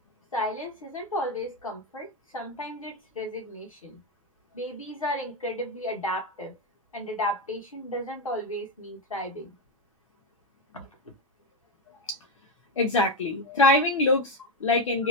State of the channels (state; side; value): normal; both; correlation 0.09